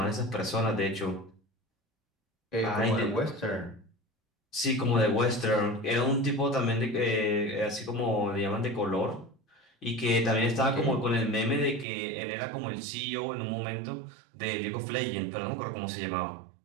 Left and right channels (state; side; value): drops out; left; at 11.9 s